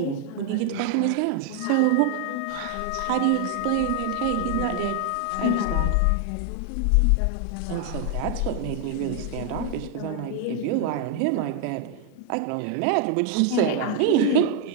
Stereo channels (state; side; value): different; both; correlation 0.00